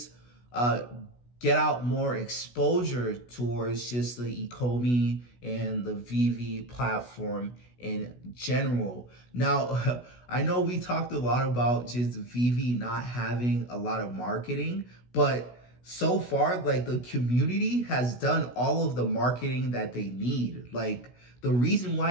get out more exposure towards just the Ecomi and the Veve platform in general. Now, I know we talked a lot about just Veve not having a lot of marketing, but so far, like the community has done all of the marketing that they need. Like, the reason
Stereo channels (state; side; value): late; right; 16 ms